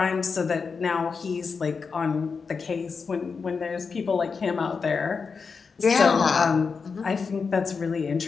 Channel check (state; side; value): quieter; right; 5.2 dB